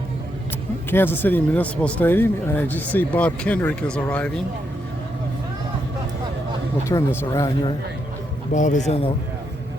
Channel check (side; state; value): both; normal; correlation 0.80